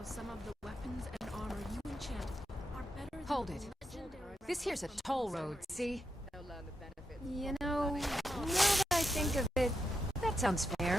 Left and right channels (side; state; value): both; normal; correlation 0.84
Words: some of the weapons and armor you enchant are better than Hold it. This here's a toll road, see? You know, now that I think of it, that sounds fair.